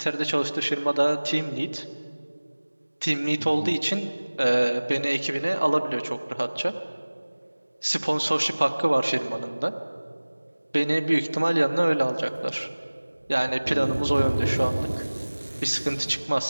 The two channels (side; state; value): both; inverted; correlation -1.00